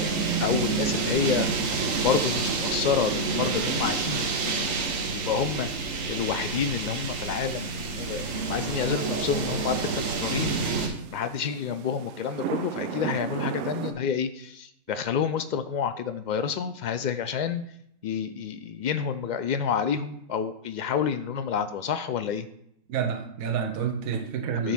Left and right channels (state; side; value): late; left; 3.7 ms